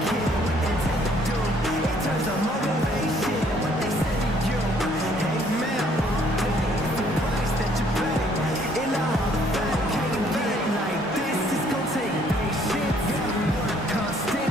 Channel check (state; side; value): normal; both; correlation 0.63